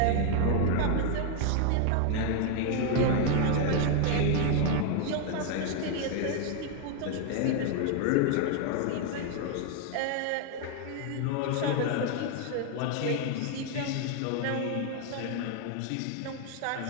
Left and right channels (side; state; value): both; different; correlation 0.00